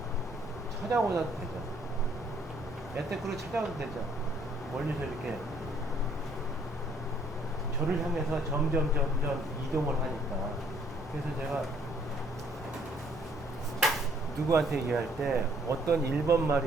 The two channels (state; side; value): normal; both; correlation 0.64